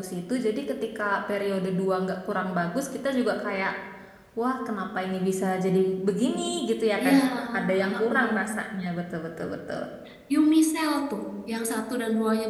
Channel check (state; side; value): identical; both; correlation 1.00